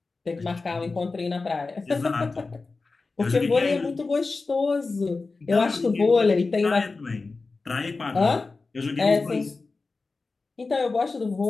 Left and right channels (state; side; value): quieter; right; 3.9 dB